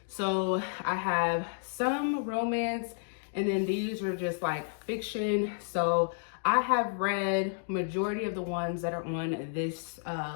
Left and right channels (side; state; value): right; silent; digital silence